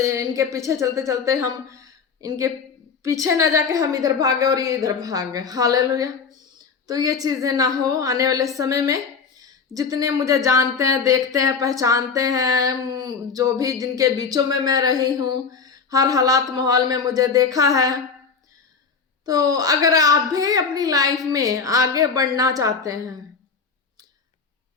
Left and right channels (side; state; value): right; quieter; 5.5 dB